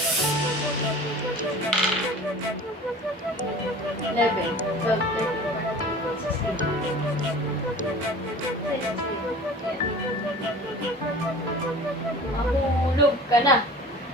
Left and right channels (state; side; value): normal; both; correlation 0.42